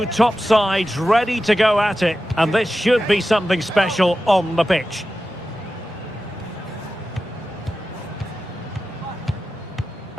top sides ready to go at it, and this should be something special on the pitch.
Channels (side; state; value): both; normal; correlation 0.93